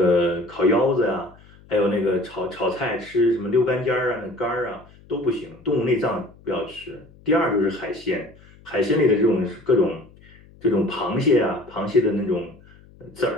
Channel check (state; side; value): noise; left; hum, 25 dB below the sound